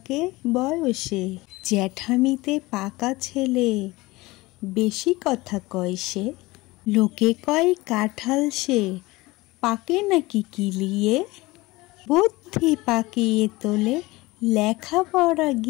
বয়সে, জ্যাঠামিতে পাকা ছেলে বেশি কথা কয় সে। লোকে কয় কাঁঠাল সে, পাকে নাকি কিলিয়ে, বুদ্ধি পাকিয়ে তোলে লেখাপড়া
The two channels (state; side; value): quieter; right; 21.0 dB